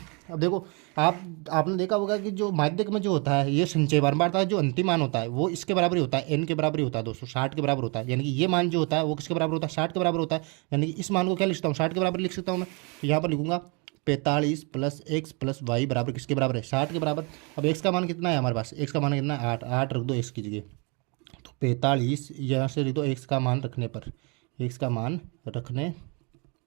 अब देखो आपने देखा होगा कि जो माध्यक में जो होता है ये संचय बारंबारता है, जो अंतिम मान होता है वो इसके बराबर ही होता है, n के बराबर ही होता है दोस्तों, 60 के बराबर होता है। यानी कि ये मान जो होता है वो किसके बराबर होता है, 60 के बराबर होता है। यानी कि इस मान को क्या लिख सकता हूँ, 60 के बराबर लिख सकता हूँ मैं। तो यहाँ पर लिखूंगा 45 + x + y बराबर किसके बराबर है, 60 के बराबर। अब x का मान कितना है हमारे पास, x का मान कितना है 8, 8 रख दो x की जगह, तो 45 यहाँ से लिख दो x का मान रखने पर, x का मान रखने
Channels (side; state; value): left; quieter; 32.1 dB